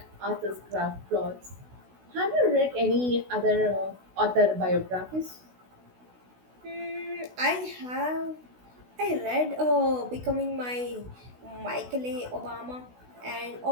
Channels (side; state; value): left; late; 16 ms